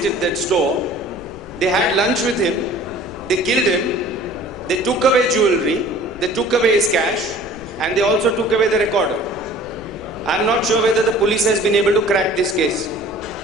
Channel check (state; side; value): noise; left; rumble, 21 dB below the sound